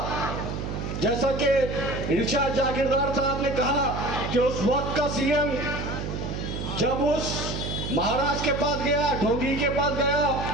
जैसा कि इरशाद जागीरदार साहब ने कहा कि उस वक्त का सीएम जब उस महाराज के पास गया, ढोंगी के पास गया,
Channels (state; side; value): noise; right; hum, 5 dB below the sound